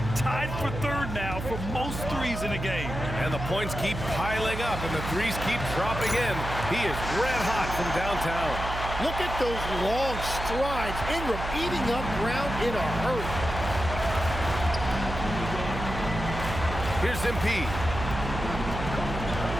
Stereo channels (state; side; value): noise; right; hum, 6 dB below the sound